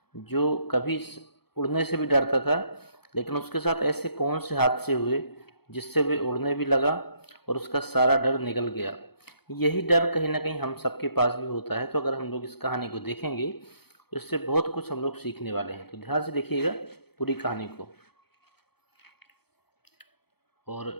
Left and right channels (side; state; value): right; late; 0.97 ms